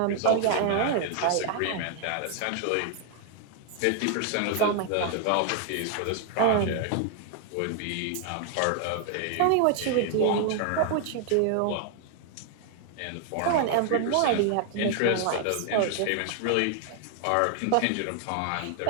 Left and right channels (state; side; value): different; both; correlation 0.00